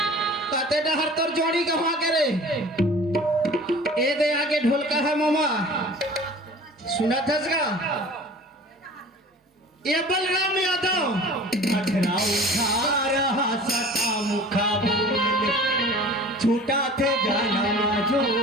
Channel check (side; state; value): both; normal; correlation 0.43